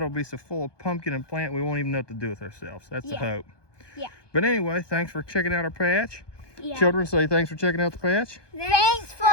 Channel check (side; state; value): right; late; 1.2 ms